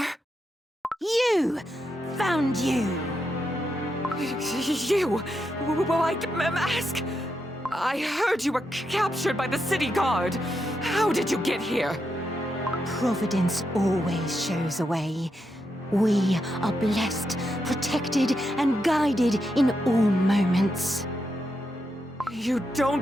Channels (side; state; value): both; normal; correlation 0.84